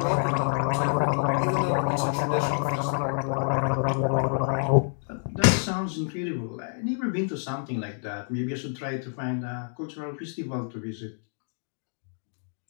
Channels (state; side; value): silent; right; digital silence